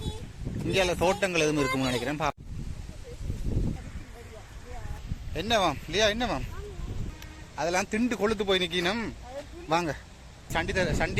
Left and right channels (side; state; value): both; identical; correlation 1.00